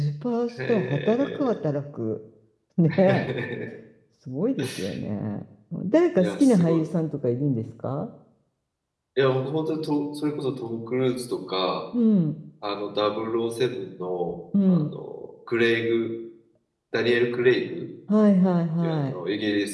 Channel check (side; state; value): both; identical; correlation 1.00